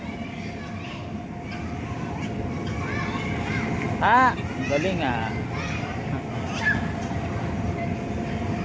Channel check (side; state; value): both; identical; correlation 1.00